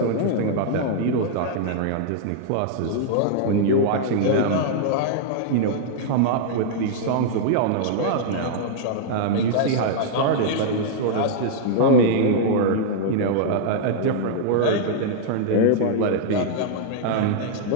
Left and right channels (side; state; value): both; different; correlation -0.02